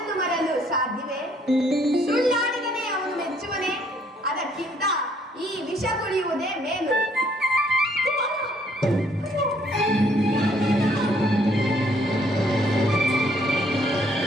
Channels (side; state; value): both; normal; correlation 0.65